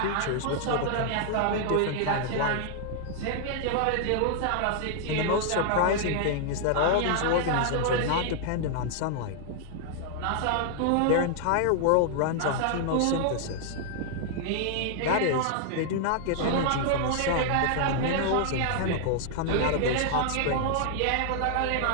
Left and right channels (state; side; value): different; both; correlation -0.01